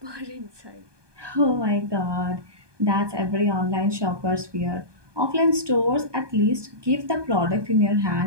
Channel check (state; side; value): late; left; 1.2 ms